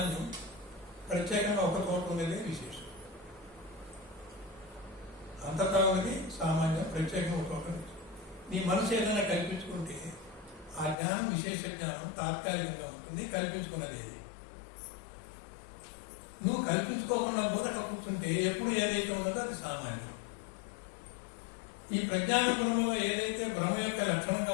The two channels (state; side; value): drops out; right; at 11.0 s